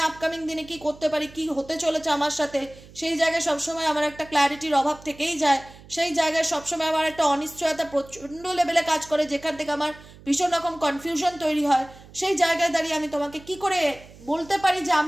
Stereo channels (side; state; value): right; noise; hum, 21 dB below the sound